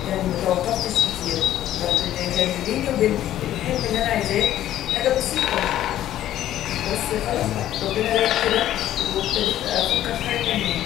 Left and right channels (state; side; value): quieter; right; 12.6 dB